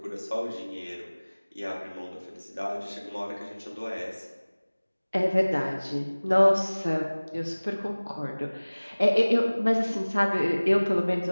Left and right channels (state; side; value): inverted; both; correlation -1.00